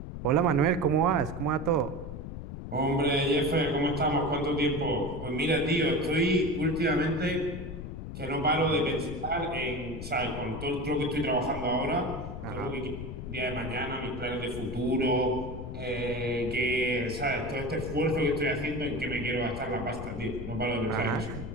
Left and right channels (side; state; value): left; noise; rumble, 8 dB below the sound